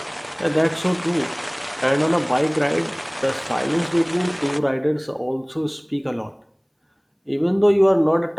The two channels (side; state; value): both; identical; correlation 1.00